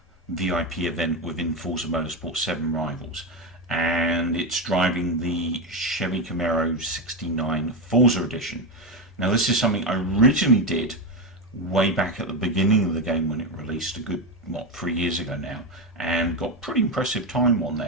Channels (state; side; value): normal; both; correlation 0.12